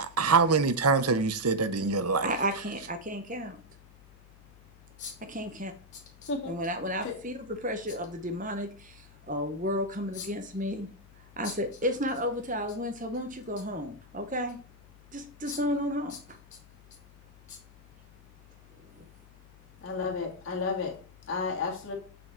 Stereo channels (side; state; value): left; noise; hum, 23 dB below the sound